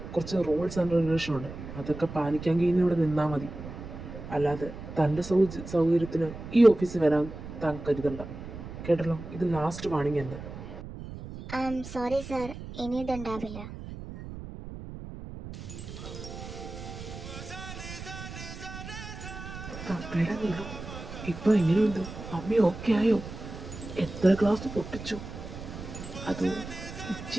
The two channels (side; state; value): right; noise; rumble, 11 dB below the sound